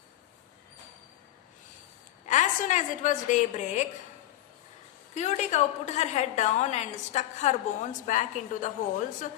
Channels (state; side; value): quieter; right; 14.3 dB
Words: As soon as it was daybreak, Cutie Cow put her head down and stuck her bones back into the holes